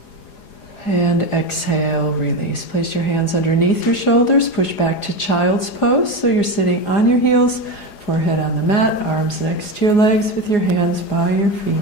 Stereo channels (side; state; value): right; late; 4.9 ms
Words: And exhale, release. Place your hands underneath your shoulders. Push back to child's pose. So you're sitting on your heels, forehead on the mat, arms next to your legs with your hands by your